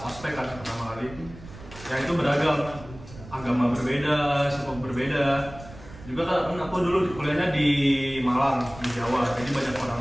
ospek kan pertama kali. Ya itu beragam, agama berbeda, suku berbeda. Juga kan aku dulu kuliahnya di Malang, di Jawa, jadi banyak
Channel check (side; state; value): right; noise; rumble, 17 dB below the sound